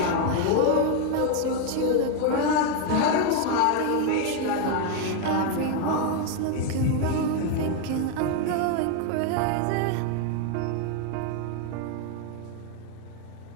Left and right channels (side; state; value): both; different; correlation 0.01